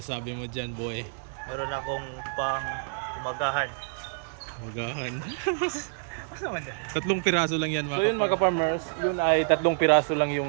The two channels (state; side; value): silent; left; digital silence